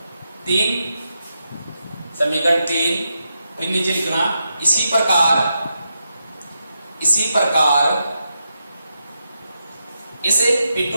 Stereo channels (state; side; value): inverted; both; correlation -0.85